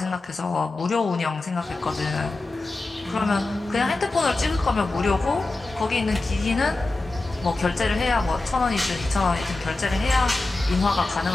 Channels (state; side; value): quieter; right; 3.1 dB